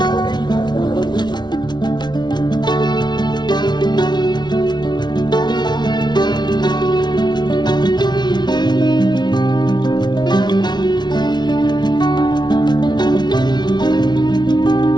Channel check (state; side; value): late; right; 0.20 ms